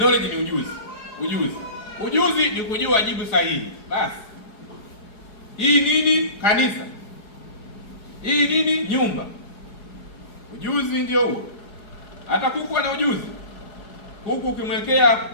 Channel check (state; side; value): late; right; 4.8 ms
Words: ni ujuzi ni kujua jibu sahihi. Basi hii nini? Kanisa. Hii nini? Nyumba. Ujuzi ndio huo. Hata kuku ana ujuzi. Kuku ukimwekea